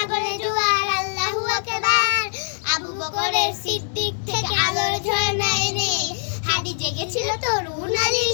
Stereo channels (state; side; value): silent; right; digital silence